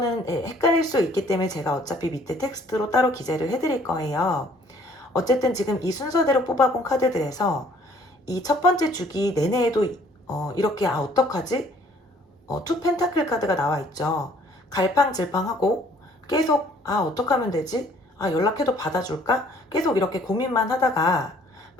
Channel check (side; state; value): both; normal; correlation 0.59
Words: 헷갈릴 수 있기 때문에 제가 어차피 밑에 텍스트로 따로 기재를 해드릴 거예요. 어쨌든 지금 이 순서대로 뽑아본 카드들에서 이 첫 번째 주기 내내에도 이렇게 어떡하지? 투 펜타클 카드가 나와 있죠. 갈팡질팡하고 계속 어떡하면 되지? 연락해도 받아줄까? 계속 이렇게 고민만 하다가